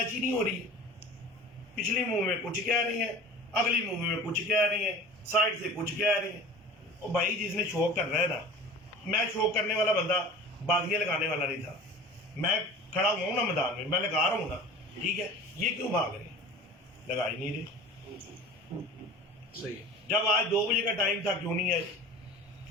ہی نہیں ہو رہی. پچھلی مووی میں کچھ کہہ رہی ہیں, اگلی مووی میں کچھ کہہ رہی ہیں, سائڈ سے کچھ کہہ رہی ہیں. اور بھائی جس نے شوق کر رہا ہے نا, میں شوق کرنے والا بندہ بازیاں لگانے والا نہیں تھا. میں کھڑا ہوا ہوں نا میدان میں, میں لگا رہا ہوں نا, ٹھیک ہے. یہ کیوں بھاگ رہے ہیں, لگا ہی نہیں رہے. صحیح. جب آج 2 بجے کا ٹائم تھا, کیوں نہیں آئے,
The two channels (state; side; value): normal; both; correlation 0.39